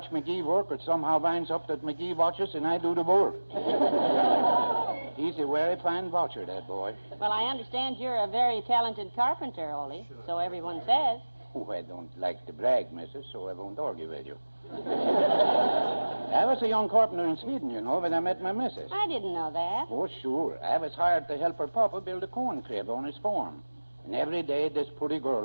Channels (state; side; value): inverted; both; correlation -1.00